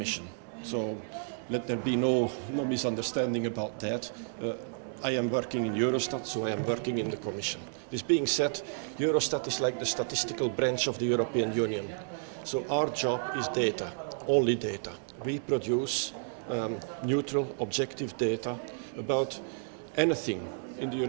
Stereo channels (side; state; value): left; silent; 57 dB below the other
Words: So let there be no misunderstanding about that. I am working in Eurostat, so I am working in the Commission. This being said, Eurostat is like the statistical branch of the European Union. So our job is data, only data. We produce neutral, objective data about anything in the